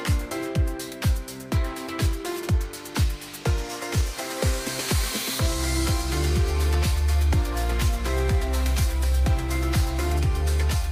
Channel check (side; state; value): both; identical; correlation 1.00